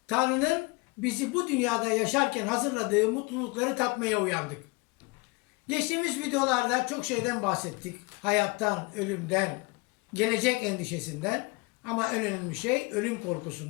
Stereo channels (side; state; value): right; quieter; 27.1 dB